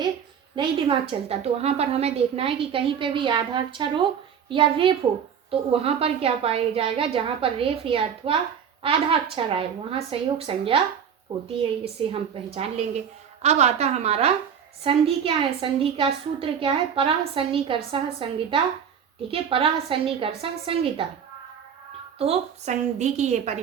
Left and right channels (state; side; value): quieter; left; 7.8 dB